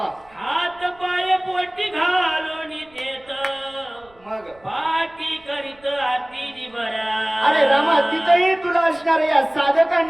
हात पाय पोटी घालून देत मग पाठी करीत आरती बरा. अरे रामा तिथंही तुला असणार या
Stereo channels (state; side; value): noise; right; rumble, 29 dB below the sound